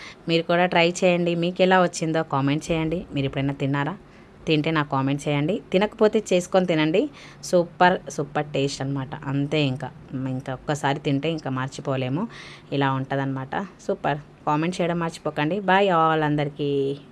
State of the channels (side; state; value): both; identical; correlation 1.00